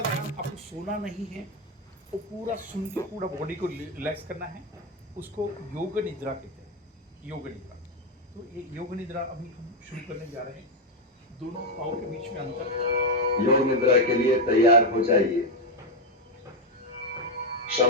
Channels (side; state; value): both; normal; correlation 0.05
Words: सोना नहीं है, वो पूरा सुन के पूरा बॉडी को रिलैक्स करना है। उसको योग निद्रा कहते हैं, योग निद्रा। तो ये योग निद्रा अभी हम शुरू करने जा रहे हैं। दोनों पाँव के बीच में अंतर। योग निद्रा के लिए तैयार हो जाइए।